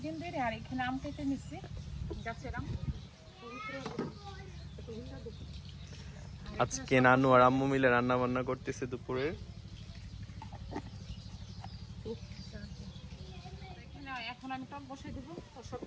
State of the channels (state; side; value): identical; both; correlation 1.00